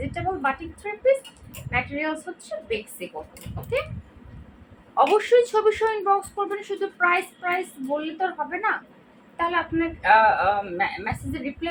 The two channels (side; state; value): both; identical; correlation 1.00